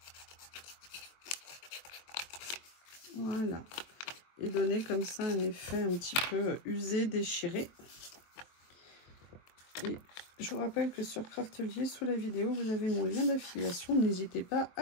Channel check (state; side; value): late; right; 23 ms